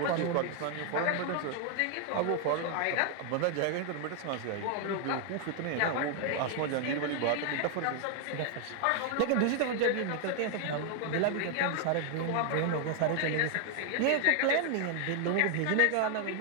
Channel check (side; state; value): both; different; correlation 0.00